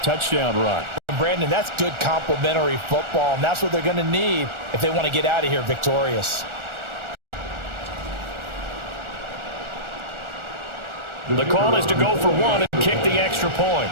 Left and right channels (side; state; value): left; late; 1.4 ms